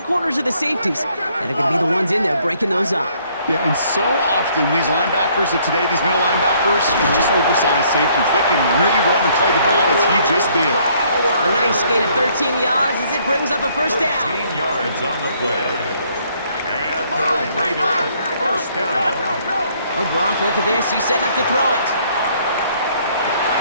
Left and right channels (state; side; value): inverted; both; correlation -0.65